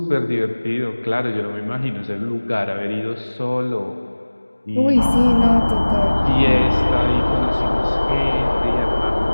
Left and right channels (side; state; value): both; inverted; correlation -1.00